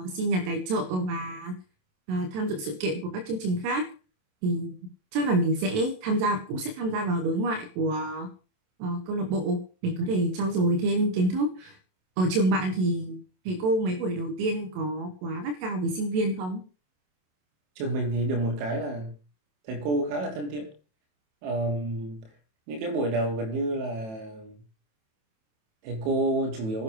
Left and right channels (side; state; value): left; late; 27 ms